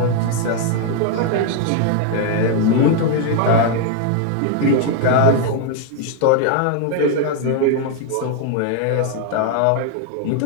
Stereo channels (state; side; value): different; both; correlation 0.00